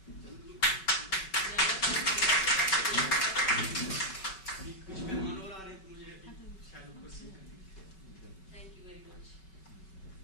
کچھ مہمان اور آ رہے ہیں تو مجھے شاید اوپر سے. Thank you very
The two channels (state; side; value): late; right; 5.3 ms